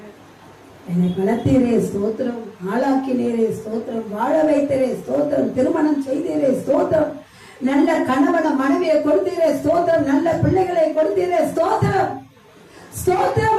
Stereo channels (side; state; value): both; identical; correlation 1.00